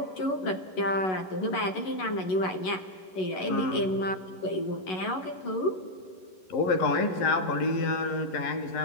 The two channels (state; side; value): late; right; 11 ms